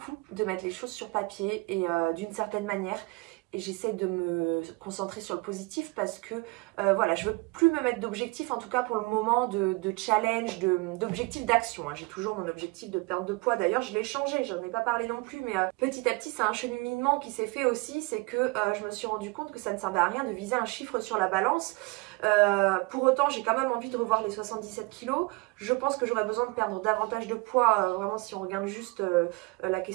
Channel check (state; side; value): quieter; left; 26.2 dB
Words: de mettre les choses sur papier et d'une certaine manière. Et j'essaie de me concentrer sur le positif parce que voilà, je veux plus me mettre d'objectifs, en tout cas pour le moment, de challenge, d'objectifs d'action. J'ai toujours mon objectif de perte de poids. D'ailleurs, je l'ai changé, j'en ai pas parlé non plus, mais petit à petit, c'est un cheminement qui s'est fait aussi. C'est que je me suis rendu compte que ça ne servait à rien de viser un chiffre sur la balance. Pour autant, j'ai quand même envie de revoir les 77 kilos. Je pense que j'aurais besoin de perdre davantage de poids, vraiment si on regarde juste la